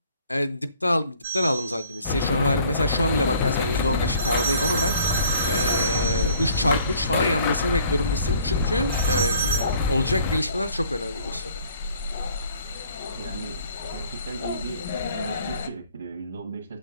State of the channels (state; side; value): inverted; both; correlation -0.58